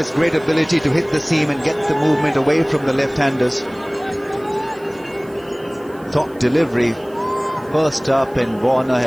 great ability to hit the seam and get the movement away from the left-handers. Top delivery, first up, and Warner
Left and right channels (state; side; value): noise; right; hiss, 28 dB below the sound